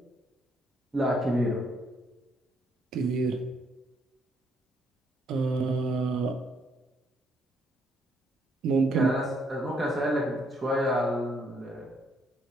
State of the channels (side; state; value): both; normal; correlation 0.71